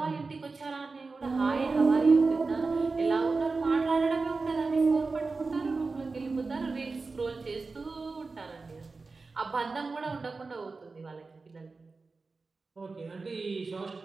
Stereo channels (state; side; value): quieter; left; 4.0 dB